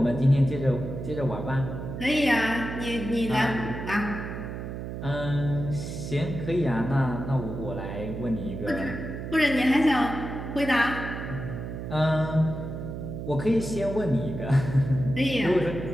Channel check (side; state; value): right; noise; hum, 7 dB below the sound